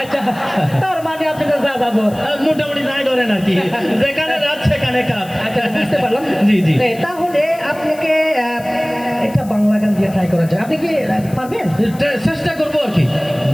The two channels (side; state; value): left; noise; hiss, 21 dB below the sound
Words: আচ্ছা, তার মানে আপনি তো যা যাবো মোটামুটি যাই ধরেন আর কি, যেখানে রাত সেখানে কাজ। আচ্ছা, বুঝতে পারলাম। জি জি। তাহলে আপনাকে একটা বাংলা গান দিয়ে ট্রাই করা যায়, আপনি কি পারবেন? চেষ্টা করবো আর কি,